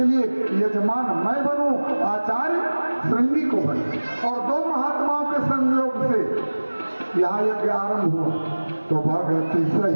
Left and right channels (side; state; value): both; inverted; correlation -1.00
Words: लिए यजमान मैं बनूं, आचार्य श्रृंगी को बने। और 2 महात्माओं के संयोग से यहाँ यज्ञ आरंभ हुआ। तो भगति